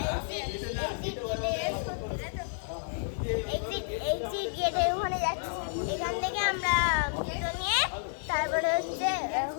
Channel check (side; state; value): right; silent; digital silence